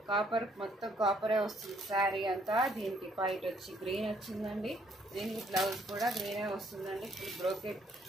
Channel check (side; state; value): both; normal; correlation 0.67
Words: కాపర్ మొత్తం కాపరే వస్తుంది శారీ అంతా. దీనికి వైట్ వచ్చి గ్రీన్ వచ్చిందండి. దీనికి బ్లౌజ్ కూడా గ్రీనే వస్తుందండి, ఫుల్ బ్రోకెట్.